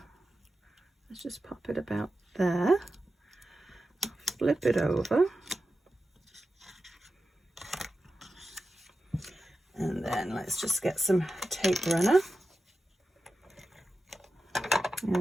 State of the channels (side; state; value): both; normal; correlation 0.92